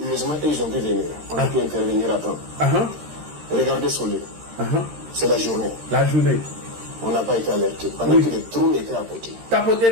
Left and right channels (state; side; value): late; left; 13 ms